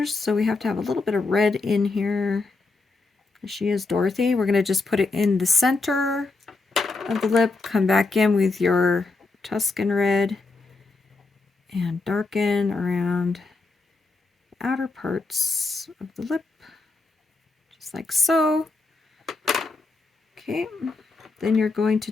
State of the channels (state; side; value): quieter; right; 3.7 dB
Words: so we have to have a little bit of red in here. She is Dorothy. We're going to just put it in the center of the lip. Come back in with your Tuscan red and darken around the outer parts of the lip, just like so. Okay, then you're going to